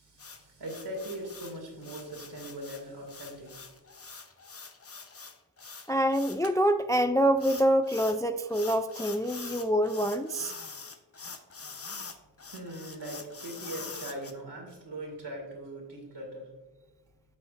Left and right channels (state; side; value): normal; both; correlation 0.67